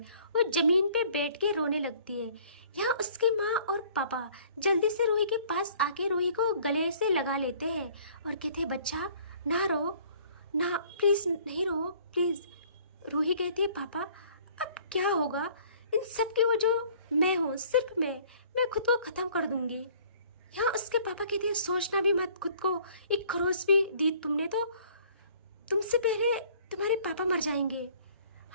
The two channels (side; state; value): both; inverted; correlation -0.55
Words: वो जमीन पे बैठ के रोने लगती है। यहाँ उसकी माँ और पापा जल्दी से रूही के पास आके रूही को गले से लगा लेते हैं और कहते हैं बच्चा ना रो, ना प्लीज़ नहीं रो प्लीज़। रूही कहती है पापा अब क्या होगा, इन सब की वजह मैं हूँ, सिर्फ मैं खुद को ख़त्म कर दूंगी। यहाँ उसके पापा कहते हैं सोचना भी मत, खुद को एक खरोच भी दी तुमने तो तुमसे पहले तुम्हारे पापा मर जाएंगे।